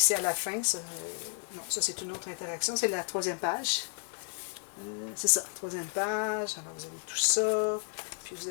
à la fin, ça, non, ça c'est une autre interaction. C'est la troisième page. C'est ça, troisième page. Alors, vous avez tout ça. Puis, vous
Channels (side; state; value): right; silent; 56 dB below the other